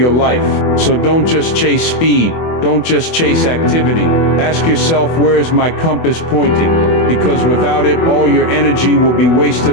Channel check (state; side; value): late; right; 24 ms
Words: life. So don't just chase speed. Don't just chase activity. Ask yourself, where is my compass pointing? Because without it, all your energy will be